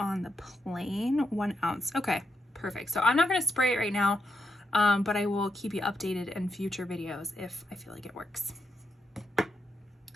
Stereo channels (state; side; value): normal; both; correlation 0.83